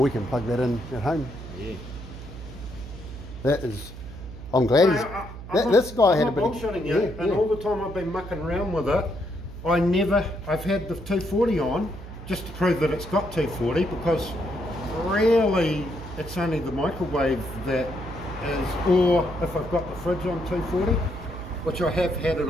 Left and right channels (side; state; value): right; noise; hum, 12 dB below the sound